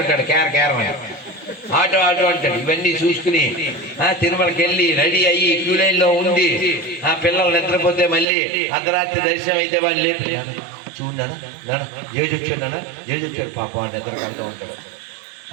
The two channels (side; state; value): left; drops out; at 8.2 s